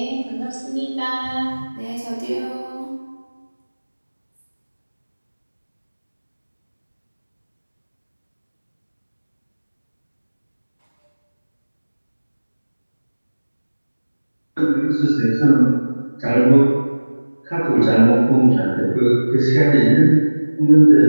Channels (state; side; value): inverted; both; correlation -1.00